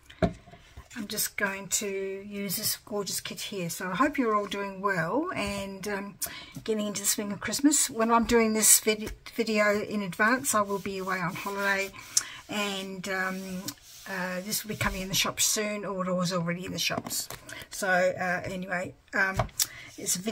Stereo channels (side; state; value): both; identical; correlation 1.00